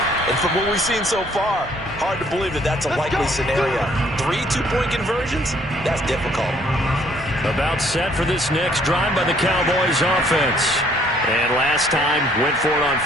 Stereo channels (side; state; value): both; normal; correlation 0.63